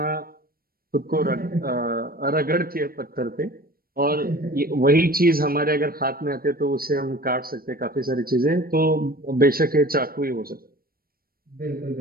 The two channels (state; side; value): late; left; 0.43 ms